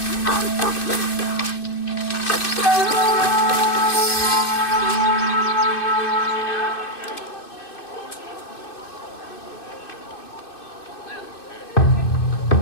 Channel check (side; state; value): right; late; 2.6 ms